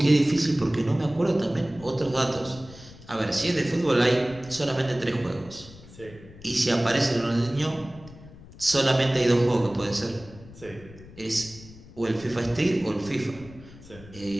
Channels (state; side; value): noise; left; rumble, 19 dB below the sound